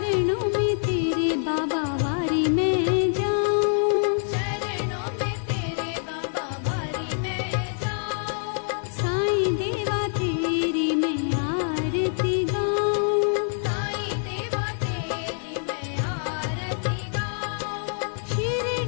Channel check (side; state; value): right; silent; 61 dB below the other